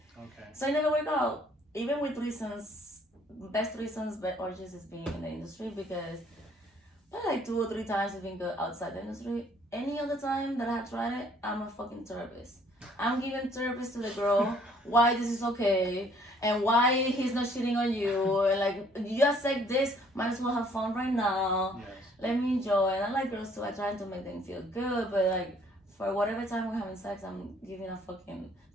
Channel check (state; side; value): normal; both; correlation 0.61